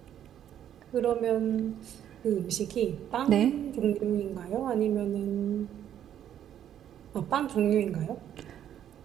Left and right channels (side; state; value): left; quieter; 10.3 dB